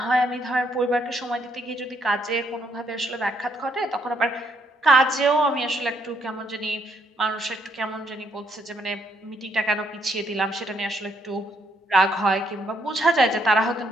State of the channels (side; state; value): both; normal; correlation 0.72